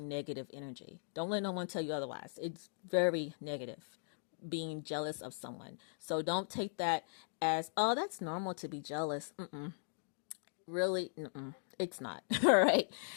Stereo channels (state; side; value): silent; right; digital silence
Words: energy. Don't let no one tell you otherwise. It's very negative, being jealous of someone. So don't take that as, oh, that's normal to be jealous. Really, it's not. All right.